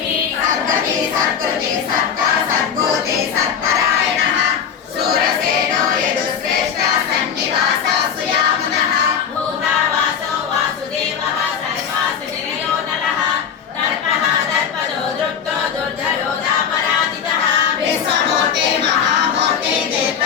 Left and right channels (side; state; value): right; quieter; 7.6 dB